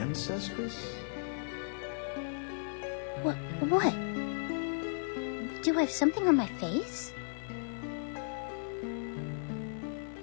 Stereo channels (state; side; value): silent; right; digital silence